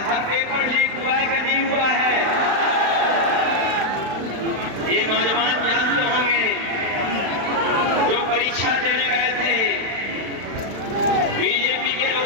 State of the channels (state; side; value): late; left; 36 ms